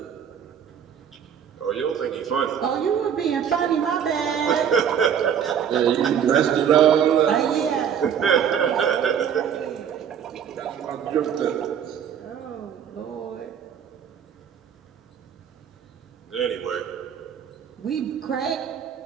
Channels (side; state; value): left; quieter; 8.3 dB